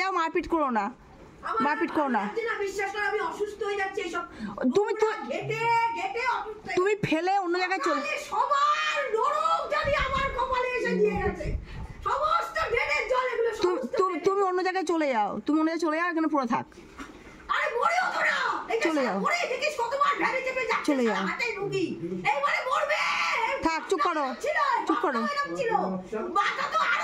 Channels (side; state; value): both; identical; correlation 1.00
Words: যাও, মারপিট করো না, মারপিট করো না। বিশ্বাস করো আমি অসুস্থ হয়ে যাচ্ছি এইসব তুমি তো ঘেটে ঘেটে অসুস্থ। তুমি ফেলে অন্য জায়গায় চলে। সবার নরক জানি আমার কপালে এসে দিয়ে গেছে, সমস্ত ড্রেনের জল এগুলো তুমি অন্য জায়গায় চলে যাও, তুমি অন্য জায়গায় চলে যাও, এখানে পুরো থাক। আরে মরেও তো না, চলে যাও, মরে দেখিস কতবার ভ্যানে চেপে যাচ্ছে, চলে যাও, হাতে রুগী এইবারে মরবে। থাক, চুপ করো, চুপ করো। মাথা তো